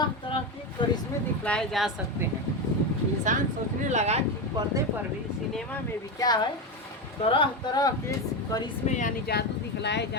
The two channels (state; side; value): normal; both; correlation 0.15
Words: तरह के करिश्मे दिखलाए जा सकते हैं। इंसान सोचने लगा कि पर्दे पर भी, सिनेमा में भी क्या है, तरह तरह के करिश्मे यानी जादू दिखलाए